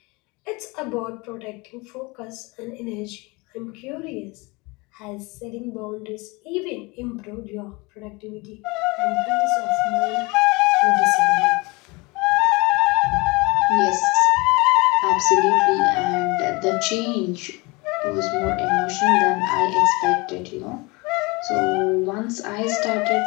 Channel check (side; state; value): right; quieter; 25.8 dB